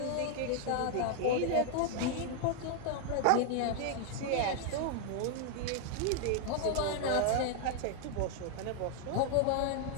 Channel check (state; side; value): different; both; correlation 0.00